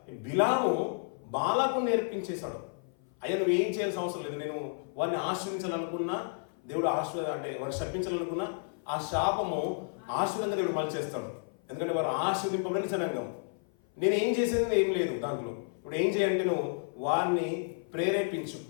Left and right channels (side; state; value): right; silent; 55 dB below the other